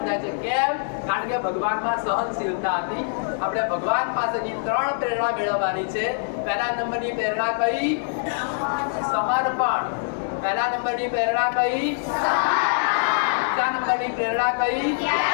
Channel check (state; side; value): silent; right; digital silence